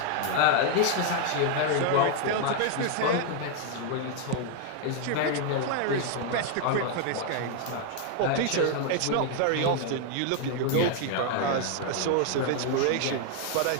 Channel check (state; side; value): different; both; correlation 0.00